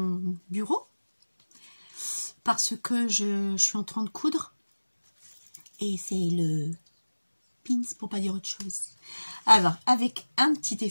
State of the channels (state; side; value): inverted; both; correlation -1.00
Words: bureau. Parce que je suis en train de coudre. Et c'est le pins pour pas dire autre chose. Alors, avec un petit